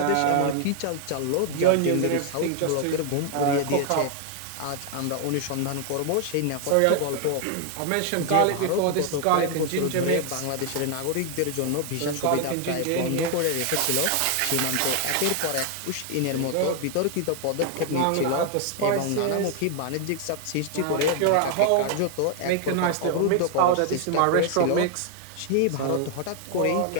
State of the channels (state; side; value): different; both; correlation 0.00